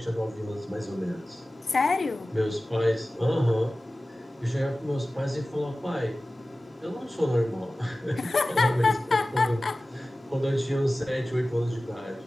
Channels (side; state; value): both; normal; correlation 0.96